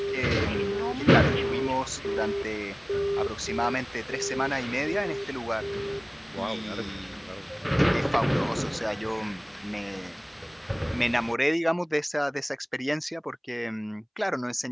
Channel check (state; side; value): identical; both; correlation 1.00